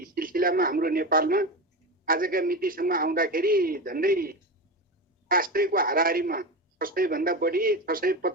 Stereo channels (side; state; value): both; normal; correlation 0.21